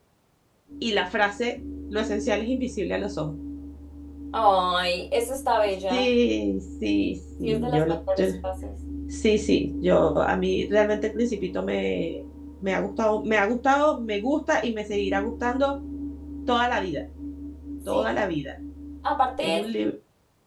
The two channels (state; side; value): identical; both; correlation 1.00